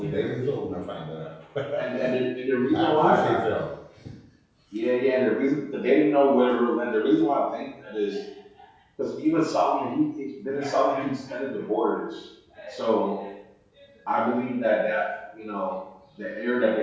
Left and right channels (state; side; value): identical; both; correlation 1.00